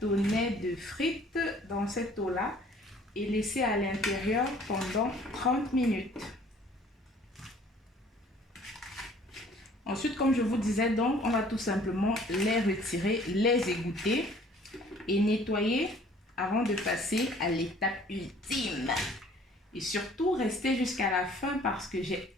de frites dans cette eau-là et laisser à l'intérieur pendant 30 minutes. Ensuite, comme je vous disais, donc, on va tout simplement les retirer, les égoutter et nettoyer avant de passer à l'étape ultime. Et surtout, restez jusqu'à la fin parce que j'ai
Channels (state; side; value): normal; both; correlation 0.54